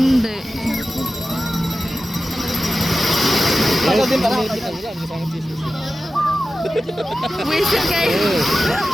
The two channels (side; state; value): both; normal; correlation 0.94